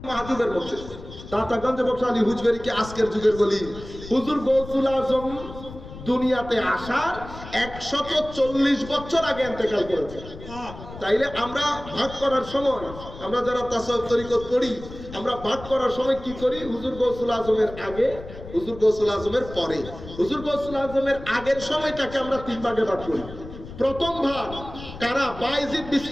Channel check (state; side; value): noise; left; rumble, 14 dB below the sound